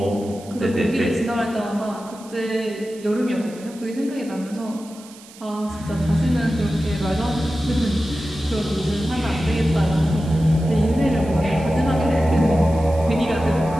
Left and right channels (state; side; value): noise; right; hiss, 21 dB below the sound